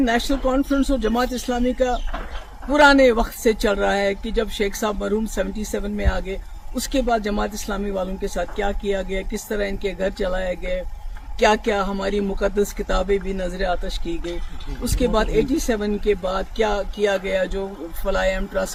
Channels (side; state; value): both; identical; correlation 1.00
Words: कॉन्फ्रेंस और जमात इस्लामी का पुराने वक्त से चल रहा है कि जब शेख साहब मरहूम 77 में आ गए, उसके बाद जमात इस्लामी वालों के साथ क्या किया गया, किस तरह इनके घर चलाए गए, क्या क्या हमारी मुकद्दस किताबें भी नजर आतश की गई, उसके बाद 87 के बाद क्या किया गया, जो फलायम